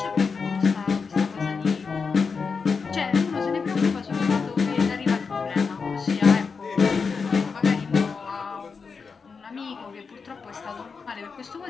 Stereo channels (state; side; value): quieter; right; 5.2 dB